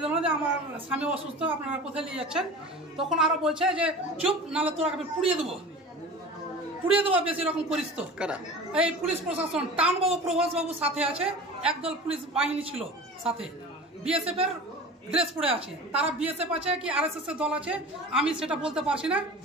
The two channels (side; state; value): both; normal; correlation 0.36